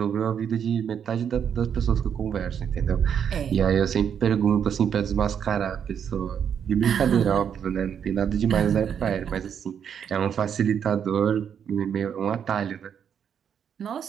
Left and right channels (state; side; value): quieter; left; 8.1 dB